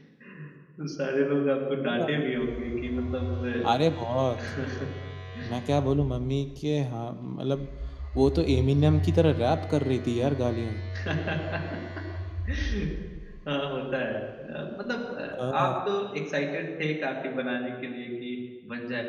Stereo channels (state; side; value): identical; both; correlation 1.00